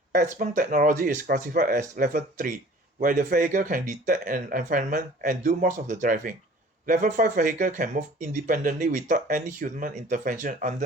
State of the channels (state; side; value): normal; both; correlation 0.49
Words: XPeng technology is classified as Level 3, where the vehicle can detect an environment and do most of the driving. Level 5 vehicle can move independently without any human intervention